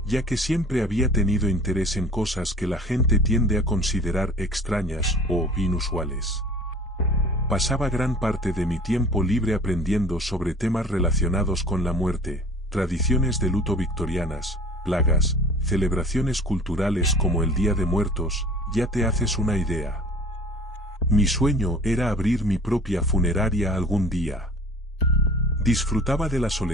ya que siempre había tenido interés en cosas que la gente tiende a considerar extrañas o inusuales. Pasaba gran parte de mi tiempo libre aprendiendo sobre temas relacionados con la muerte, tradiciones de luto victorianas, plagas, celebraciones culturales como el Día de Muertos. Ya te haces una idea. Mi sueño era abrir mi propia funeraria algún día. Disfrutaba de la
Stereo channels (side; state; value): both; normal; correlation 0.45